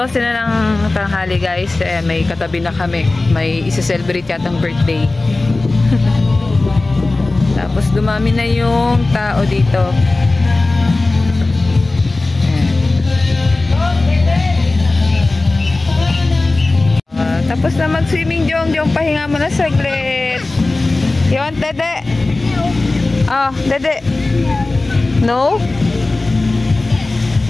na ng tanghali guys. May katabi na kami. May isa-celebrate yatang birthday. Tapos dumami na yung tao dito. Tapos na mag-swimming, Jong. Pahinga mo na saglit. You want Dede? Oh, Dede. No?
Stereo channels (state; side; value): quieter; right; 3.2 dB